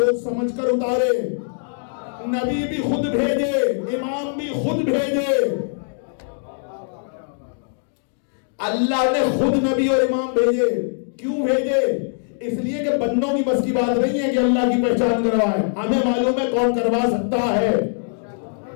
سمجھ کر اتارے، نبی بھی خود بھیجے، امام بھی خود بھیجے۔ اللہ نے خود نبی اور امام بھیجے، کیوں بھیجے؟ اس لیے کہ بندوں کی بس کی بات نہیں ہے کہ اللہ کی پہچان کروائے، ہمیں معلوم ہے کون کروا سکتا ہے،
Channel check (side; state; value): right; silent; digital silence